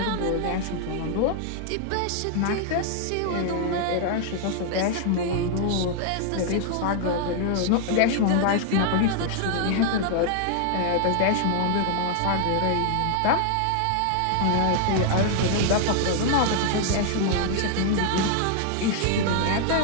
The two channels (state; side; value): different; both; correlation -0.01